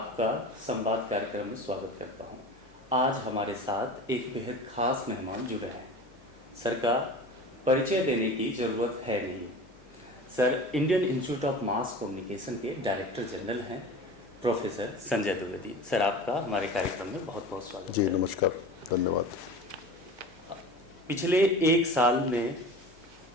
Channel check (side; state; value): both; normal; correlation 0.35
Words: संवाद कार्यक्रम में स्वागत करता हूं। आज हमारे साथ एक बेहद खास मेहमान जुड़े हैं। सर का परिचय देने की ज़रूरत है नहीं। Sir Indian institute of mass communication के डायरेक्टर जनरल हैं, प्रोफेसर संजय द्विवेदी। सर आपका हमारे कार्यक्रम में बहुत बहुत स्वागत जी है। नमस्कार, धन्यवाद। पिछले एक साल में